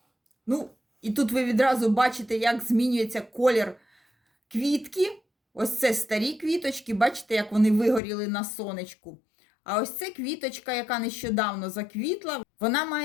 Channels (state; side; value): drops out; right; at 8.0 s